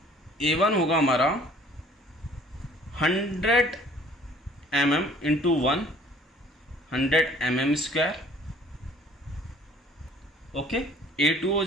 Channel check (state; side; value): normal; both; correlation 0.54